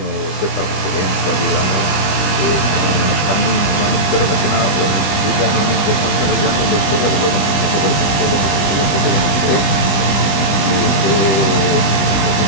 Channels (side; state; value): right; late; 20 ms